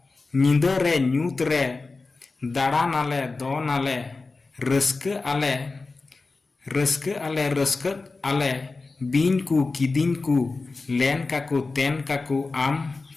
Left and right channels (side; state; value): right; quieter; 3.8 dB